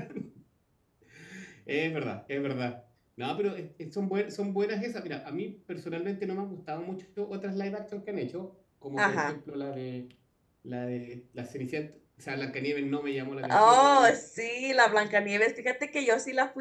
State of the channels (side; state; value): both; identical; correlation 1.00